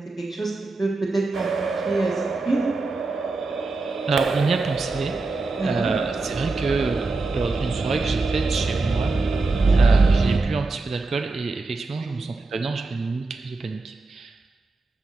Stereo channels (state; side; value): quieter; left; 3.6 dB